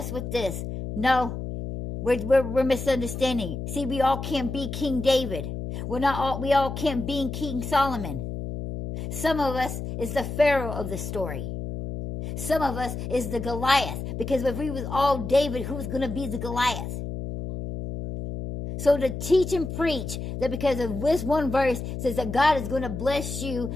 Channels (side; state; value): left; noise; hum, 6 dB below the sound